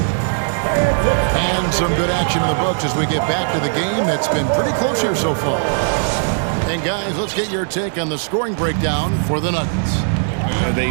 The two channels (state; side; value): silent; left; 65 dB below the other